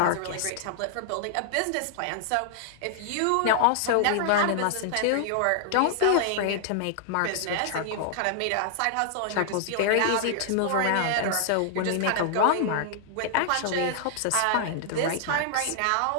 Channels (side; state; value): both; different; correlation -0.01